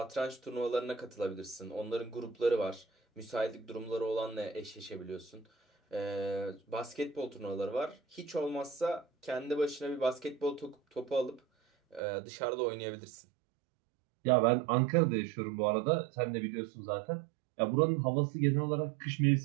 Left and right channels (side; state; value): left; drops out; at 12.0 s